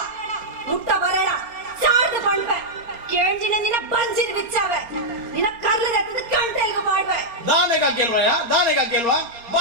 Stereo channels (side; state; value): left; late; 4.3 ms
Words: ಮುಟ್ಟ ಬರಡ ಸಾರ್ದು ಪಣ್ಪೆ ಕೇಂಜಿನ ನಿನ್ನ ಬಂಜಿನ ಬಿಚ್ಚಾವೆ ನಿನ್ನ ಕರ್ಲದ ಹತ್ತದ ಕಂಟೆಲ್ಗ ಪಾಡ್ವೆ ದಾನೆಗ ಗೆಲ್ವಾ